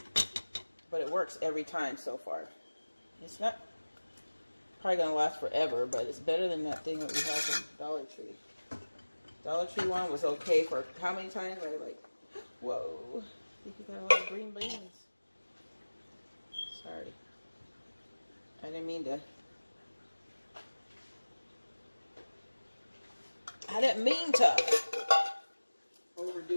But it works every time so far. It's not probably going to last forever, but it's better than that thing that we have from Dollar Tree. Dollar Tree one was okay for how many times? I was like, whoa, I think you got a lot of green beans. Sorry. I didn't mean to. I didn't mean to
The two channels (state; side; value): inverted; both; correlation -1.00